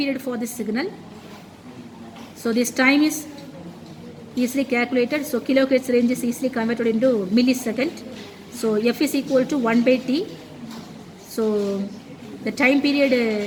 for this signal. So this time is easily calculated. So kilohertz range is easily converted into millisecond. So F is equal to 1 by T. So the time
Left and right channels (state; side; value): identical; both; correlation 1.00